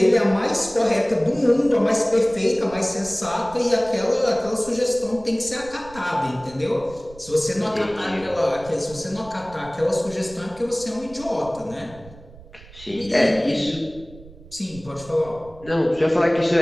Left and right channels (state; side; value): noise; right; rumble, 20 dB below the sound